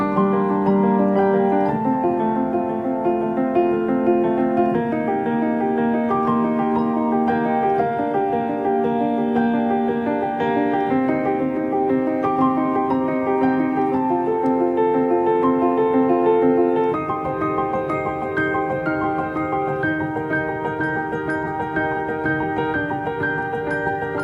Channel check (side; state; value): both; identical; correlation 1.00